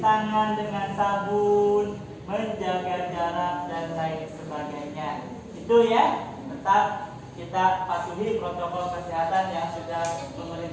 dengan sabun, menjaga jarak dan lain sebagainya. Itu ya, tetap kita patuhi protokol kesehatan yang sudah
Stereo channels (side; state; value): both; identical; correlation 1.00